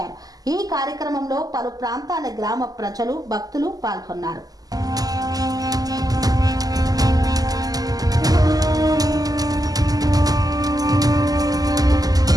ఈ కార్యక్రమంలో పలు ప్రాంతాల గ్రామ ప్రజలు భక్తులు పాల్గొన్నారు.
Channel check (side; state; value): left; late; 0.18 ms